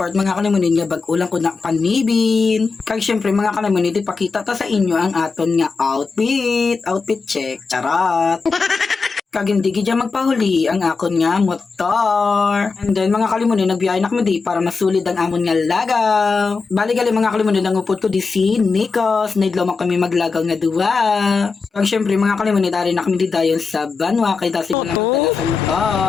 mga kalamanid nga bag-ulang ko na panibin. Kag syempre mga kalamanid, ipakita ta sa inyo ang aton nga outfit. Outfit check, charot! Kag hindi gidya magpahuli ang akon nga motor. And then mga kalimunin, nagbiyahe na kami di para masulid ang amon nga lagaw. Bali gali mga kalimunin, ang upod ko di si Nikos. Naidlaw kami maglagaw nga duwa. Kag syempre mga kalimunin, dari na kami di dayon sa Banwa. Kay dasi ko lang magdala sa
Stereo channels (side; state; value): right; quieter; 4.6 dB